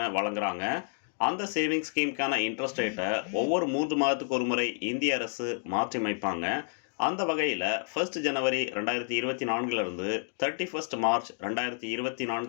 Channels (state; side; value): silent; right; 58 dB below the other